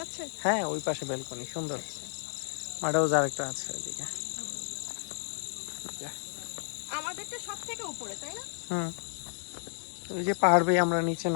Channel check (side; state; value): right; silent; digital silence